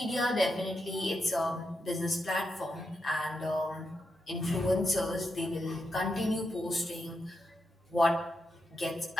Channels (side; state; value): both; normal; correlation 0.85